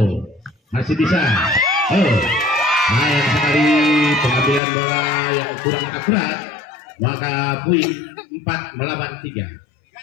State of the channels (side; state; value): right; drops out; at 4.6 s